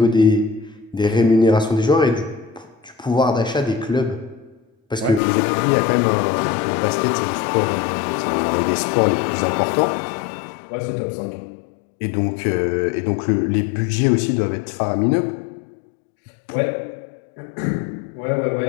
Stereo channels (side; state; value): right; drops out; at 5.2 s